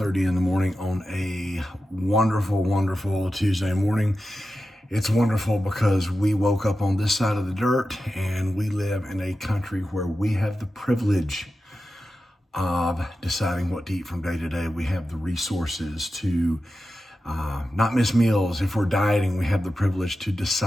in the morning on a wonderful, wonderful Tuesday morning. It's wonderful because we woke up on this side of the dirt and we live in a country where we have the privilege of deciding what to eat from day to day. We have the resources to not miss meals. If we're dieting, we have the privilege to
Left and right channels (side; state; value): both; normal; correlation 0.92